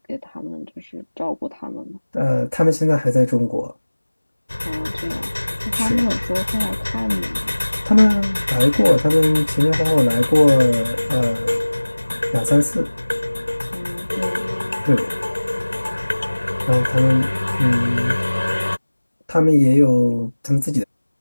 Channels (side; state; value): both; inverted; correlation -1.00